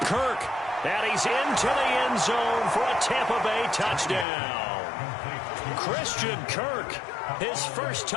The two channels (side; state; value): right; drops out; at 4.2 s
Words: And he's into the end zone for a Tampa Bay touchdown. Christian Kirk, his first